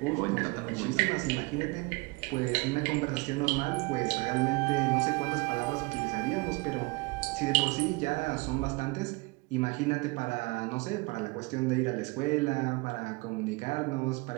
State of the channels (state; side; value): quieter; left; 26.5 dB